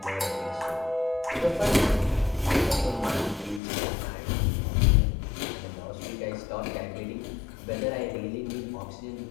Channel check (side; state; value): right; drops out; at 3.6 s